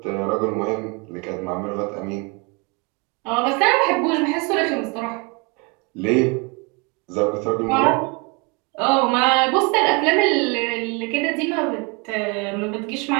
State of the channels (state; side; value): quieter; left; 30.8 dB